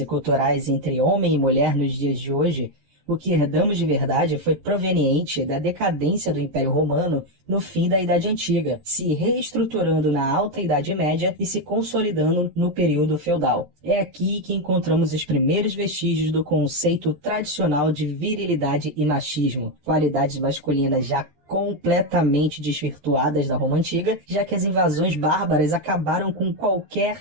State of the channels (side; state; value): left; late; 14 ms